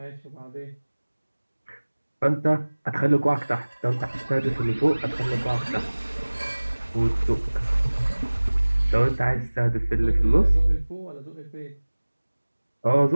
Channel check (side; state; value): both; inverted; correlation -1.00